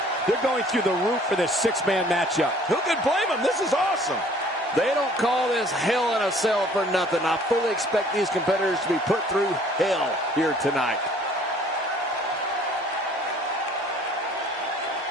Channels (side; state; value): both; normal; correlation 0.55